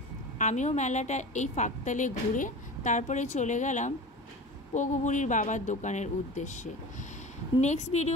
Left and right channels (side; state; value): both; normal; correlation 0.33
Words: আমিও মেলাটা এই ফাঁকতালে ঘুরে তারপরে চলে গেলাম পোগোবুড়ির বাবার দোকানের উদ্দেশ্যে। নেক্সট